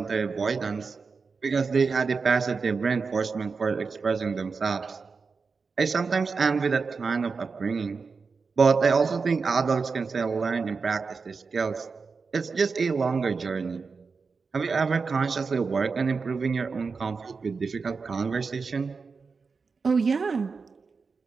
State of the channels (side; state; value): left; quieter; 4.8 dB